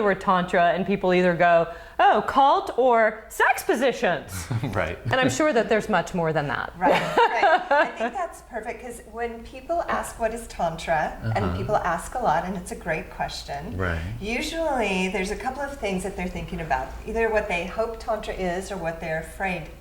word Tantra and people either go, oh, cult or sex positions. Right. And I'm sure that there's much more than that. Right. I think that's perfect because when people ask what is Tantra, and people ask a lot, and it's a great question, Right. usually there's a couple of things that they're thinking about, either what they hope Tantra is or what they're afraid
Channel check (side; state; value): both; identical; correlation 1.00